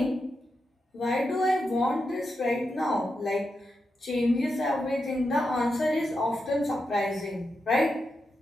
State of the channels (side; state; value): both; normal; correlation 0.87